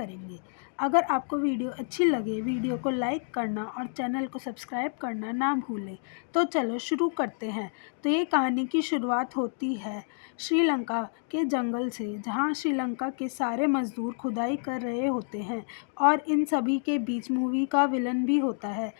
अगर आपको वीडियो अच्छी लगे, वीडियो को लाइक करना और चैनल को सब्सक्राइब करना ना भूलें। तो चलो शुरू करते हैं। तो ये कहानी की शुरुआत होती है श्रीलंका के जंगल से, जहाँ श्रीलंका के सारे मजदूर खुदाई कर रहे होते हैं और इन सभी के बीच मूवी का विलन भी होता है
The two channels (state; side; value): silent; right; digital silence